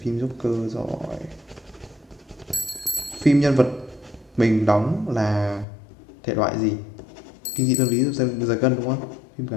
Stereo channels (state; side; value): drops out; right; at 5.7 s